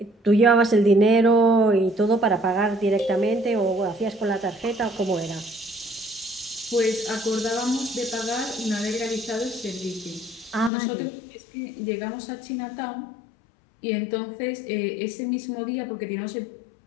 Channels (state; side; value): drops out; right; at 10.7 s